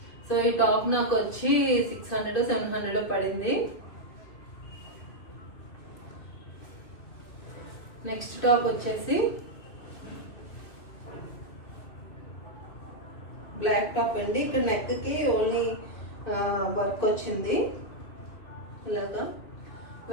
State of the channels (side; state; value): right; late; 2.7 ms